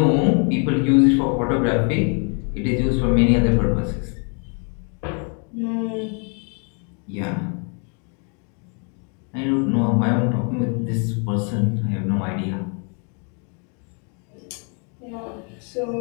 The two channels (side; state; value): right; quieter; 38.4 dB